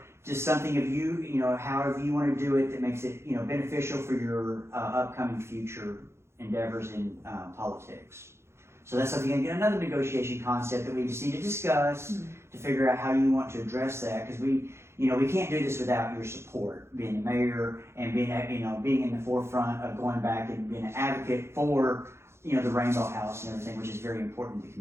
just something of you, however you want to do it that makes it, beneficial for your upcoming future endeavors in politics. So that's something, again, another negotiation concept that we just need to discuss to figure out how you want to address that, because we can't do this without your support, being the mayor and being in the forefront of going back and being an advocate for, the Rainbow House and everything, which is very important to the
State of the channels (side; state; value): left; late; 0.13 ms